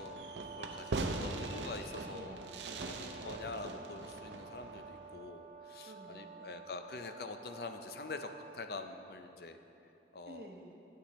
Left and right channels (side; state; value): both; normal; correlation 0.18